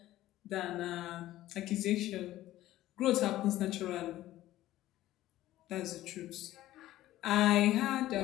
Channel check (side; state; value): right; quieter; 14.9 dB